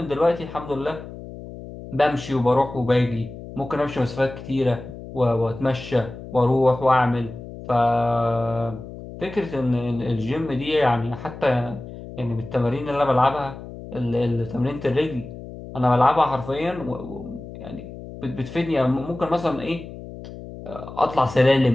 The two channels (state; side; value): noise; left; hum, 13 dB below the sound